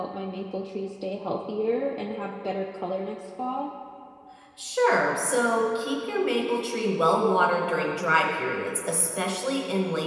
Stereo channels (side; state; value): both; identical; correlation 1.00